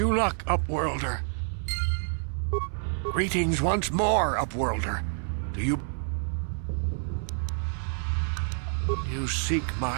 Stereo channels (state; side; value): silent; left; 59 dB below the other